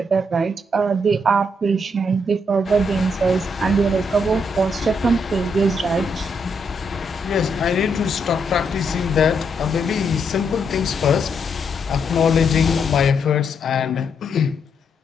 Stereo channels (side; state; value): both; normal; correlation 0.77